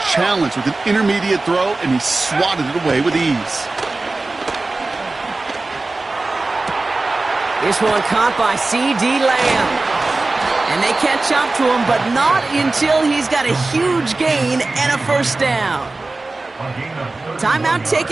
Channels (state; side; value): quieter; left; 3.3 dB